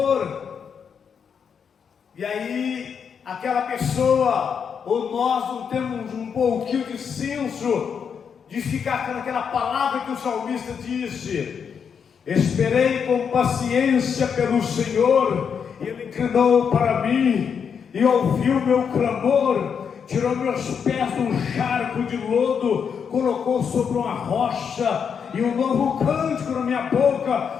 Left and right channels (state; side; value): quieter; right; 6.9 dB